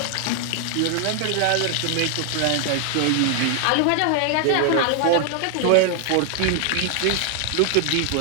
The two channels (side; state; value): both; different; correlation 0.00